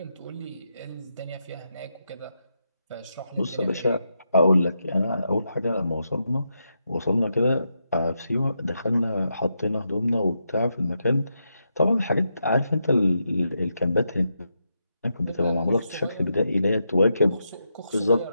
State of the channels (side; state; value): both; inverted; correlation -0.84